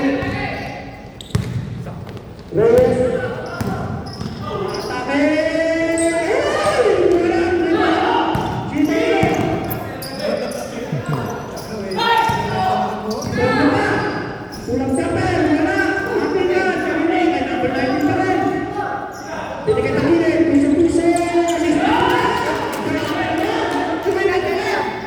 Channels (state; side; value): identical; both; correlation 1.00